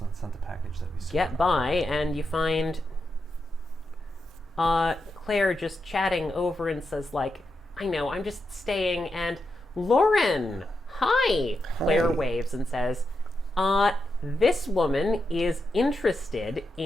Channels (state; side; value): normal; both; correlation 0.86